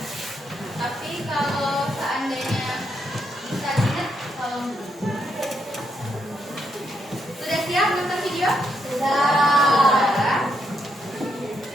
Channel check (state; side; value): normal; both; correlation 0.78